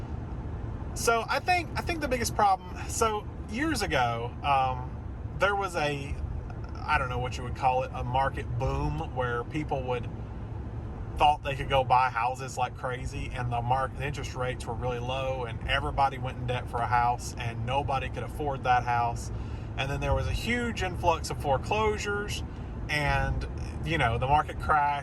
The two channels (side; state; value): both; identical; correlation 1.00